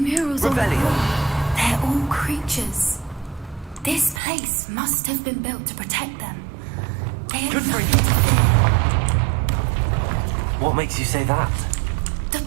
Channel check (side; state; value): left; drops out; at 4.2 s